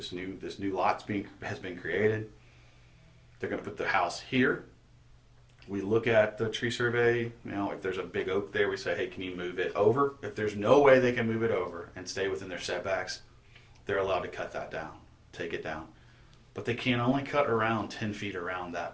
new lot has been created. They're going to put the house here. We look at the tree survey. If there's a big oak there, we say, hey, can you move it over? If there's no way they can move it over and stay within their setbacks, they're allowed to cut that down, take it down. But they can only cut around 10 feet around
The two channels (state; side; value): identical; both; correlation 1.00